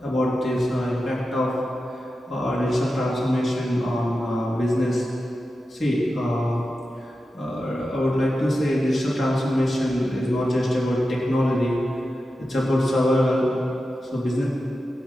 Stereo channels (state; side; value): normal; both; correlation 0.91